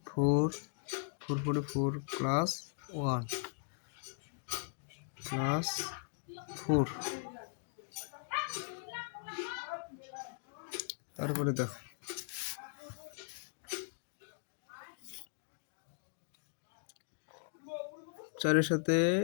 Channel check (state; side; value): silent; right; digital silence